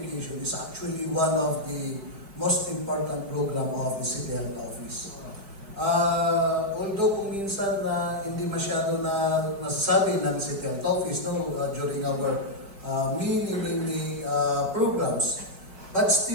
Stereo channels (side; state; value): left; late; 5.1 ms